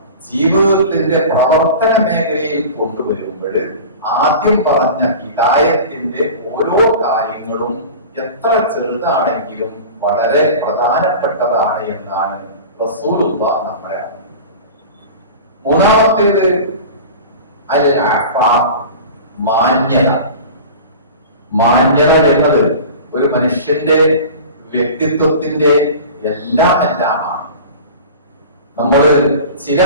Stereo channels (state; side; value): inverted; both; correlation -0.36